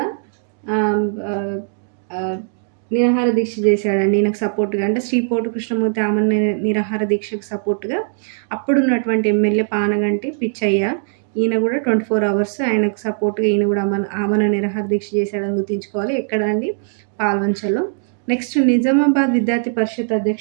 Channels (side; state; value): left; silent; digital silence